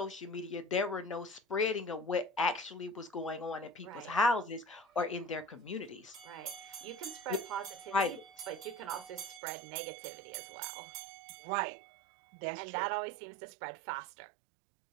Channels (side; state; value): left; drops out; at 9.4 s